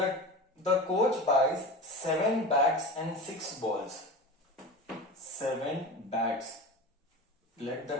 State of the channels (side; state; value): both; normal; correlation 0.30